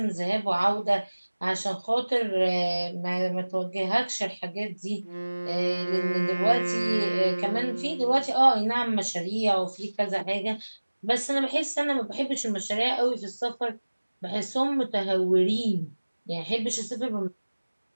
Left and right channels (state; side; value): inverted; both; correlation -1.00